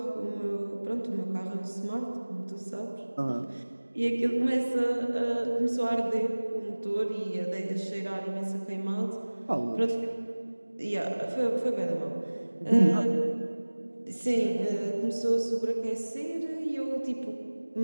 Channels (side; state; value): both; inverted; correlation -1.00